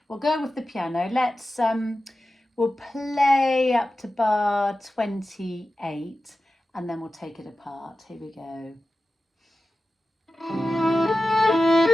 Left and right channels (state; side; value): normal; both; correlation 0.94